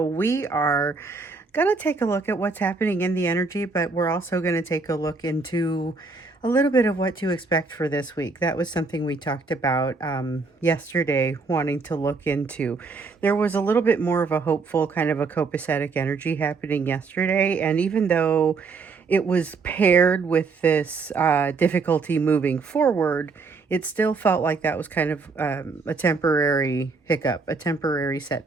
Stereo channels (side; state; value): left; quieter; 4.3 dB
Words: we are going to take a look at what's happening in the energy, but we're also going to take a look into a little bit of what to expect for this week. That was something we talked about yesterday, wanting to look into. There was a little bit more of a hopeful, kind of a copacetic energy happening yesterday, and even though it was paired with this difficulty moving forward, it still felt like that was kind of a temporary hiccup, a temporary